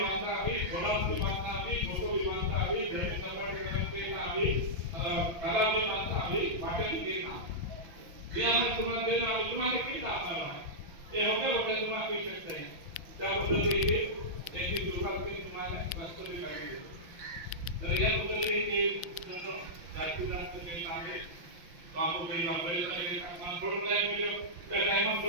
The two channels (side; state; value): left; late; 5.7 ms